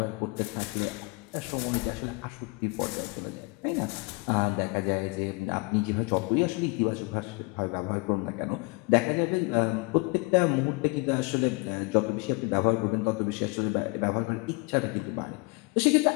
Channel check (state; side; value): quieter; right; 28.7 dB